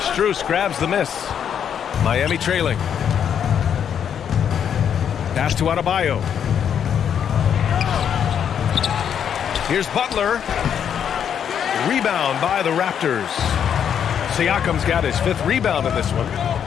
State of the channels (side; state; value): right; quieter; 8.4 dB